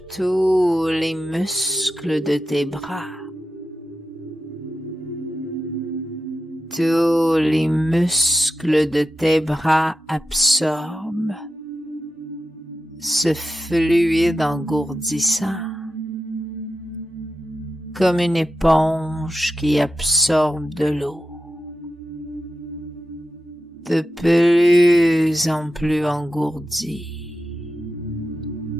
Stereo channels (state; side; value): normal; both; correlation 0.90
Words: tous les muscles de tes bras. Tous les muscles de tes bras absorbent ce fluide engourdissant comme une éponge qui absorbe de l'eau. De plus en plus engourdi.